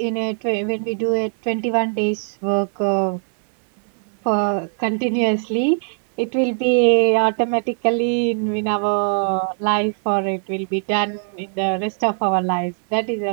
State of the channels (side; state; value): left; silent; 65 dB below the other